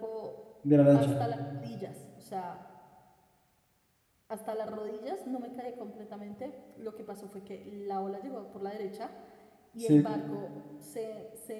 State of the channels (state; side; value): identical; both; correlation 1.00